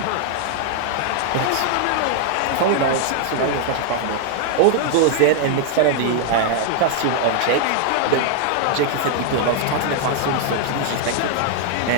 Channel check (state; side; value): different; both; correlation 0.00